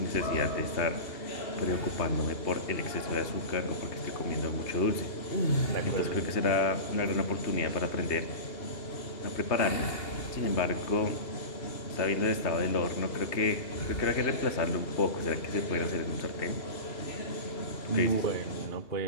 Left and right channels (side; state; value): right; late; 2.8 ms